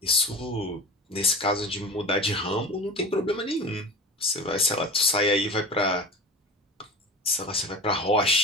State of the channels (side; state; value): both; normal; correlation 0.33